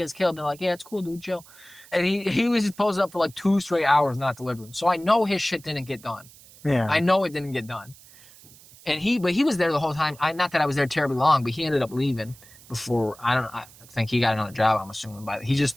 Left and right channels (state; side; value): noise; right; hiss, 23 dB below the sound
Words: get us killed. And they're like, yeah, it's cool, dude, chill. And he was just posted up for like 2 straight hours not delivering. So I know his shit didn't get done. Yeah. I know it didn't get done. But he was there the whole time. Not that I was there terribly long, but he ended up leaving before, I think he got another job, I'm assuming. But he